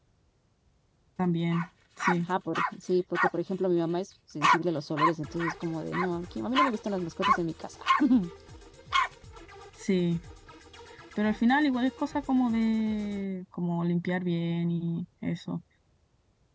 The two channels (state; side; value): identical; both; correlation 1.00